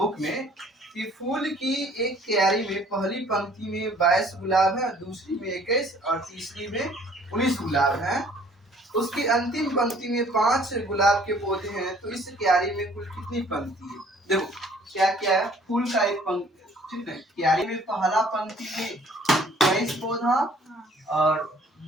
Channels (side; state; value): both; normal; correlation 0.56